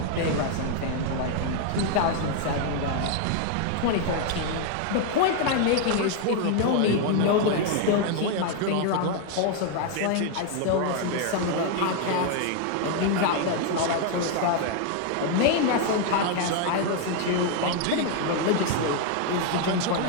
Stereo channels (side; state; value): both; different; correlation 0.00